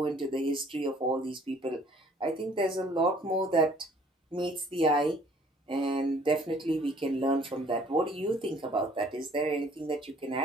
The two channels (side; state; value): both; normal; correlation 0.57